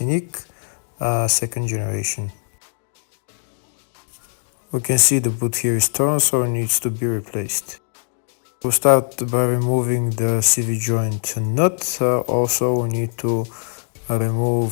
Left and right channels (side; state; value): right; silent; digital silence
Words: second generation. We can see the boot here is torn, so it needs to be replaced. We'll start by removing the CV joint nut. Also we need to